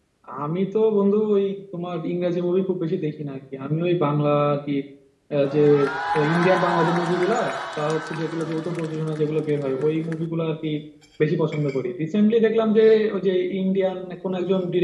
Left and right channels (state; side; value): identical; both; correlation 1.00